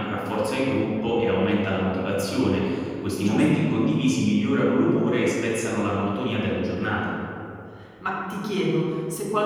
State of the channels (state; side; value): identical; both; correlation 1.00